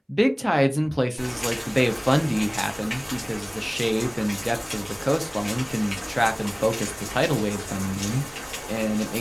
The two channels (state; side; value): identical; both; correlation 1.00